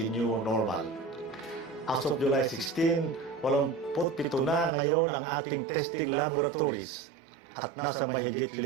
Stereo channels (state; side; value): drops out; left; at 4.7 s